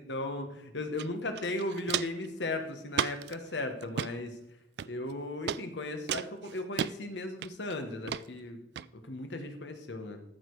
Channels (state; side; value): normal; both; correlation 0.20